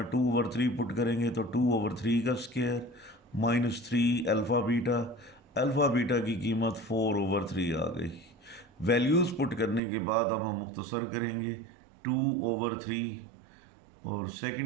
2/3 पुट करेंगे तो 2/3 का square minus 3 alpha beta. Alpha beta की कीमत 4/3 आ गई। वैल्यूज़ पुट करने के बाद अब हम मुख्तसर करेंगे 2/3 और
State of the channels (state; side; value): drops out; left; at 9.8 s